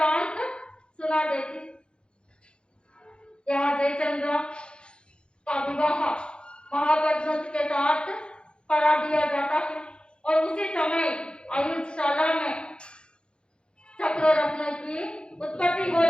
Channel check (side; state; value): right; late; 0.053 ms